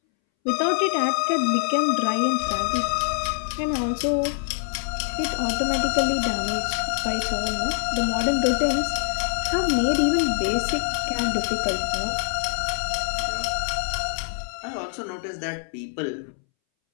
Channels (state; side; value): silent; right; 62 dB below the other